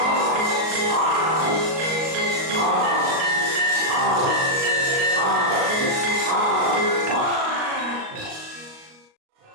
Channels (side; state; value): left; late; 38 ms